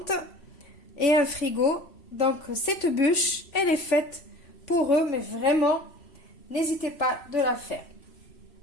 et un frigo. Donc cette bûche, elle est faite pour eux, mais vraiment, n'hésitez pas de la faire.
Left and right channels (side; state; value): right; late; 3.5 ms